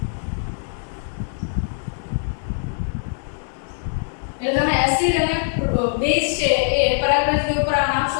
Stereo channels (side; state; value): right; silent; digital silence